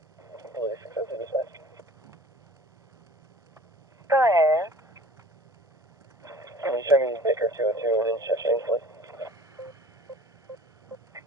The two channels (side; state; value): both; normal; correlation 0.46